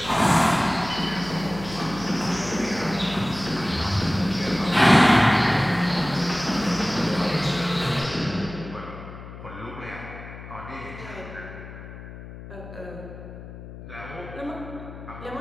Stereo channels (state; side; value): noise; left; hum, 13 dB below the sound